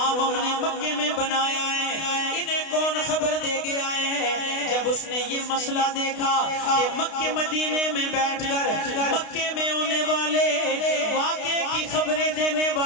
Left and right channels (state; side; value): late; right; 32 ms